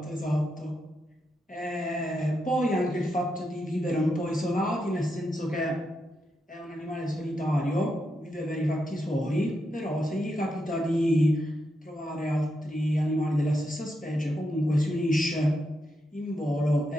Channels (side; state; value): both; normal; correlation 0.84